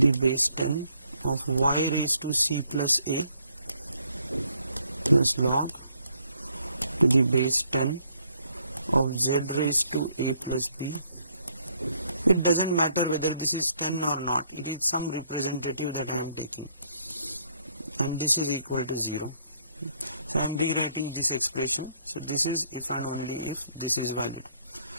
base 10 of y raised to c plus a plus log to the base 10 of z raised to a plus b. It does not matter whether this is 10 or not, it is some representative that I am taking, and this is equal to 0. So I am rewriting this expression. So this is if and only if this is valid.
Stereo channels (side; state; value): both; inverted; correlation -0.69